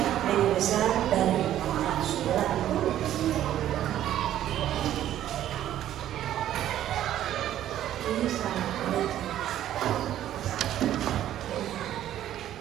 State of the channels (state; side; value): quieter; left; 12.0 dB